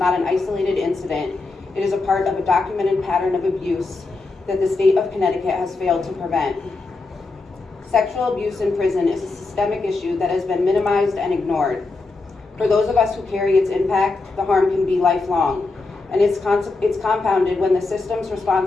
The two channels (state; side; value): quieter; right; 3.6 dB